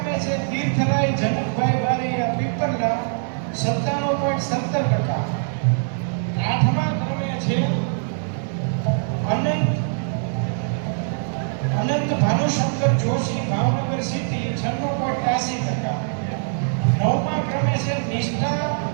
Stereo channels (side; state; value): left; silent; digital silence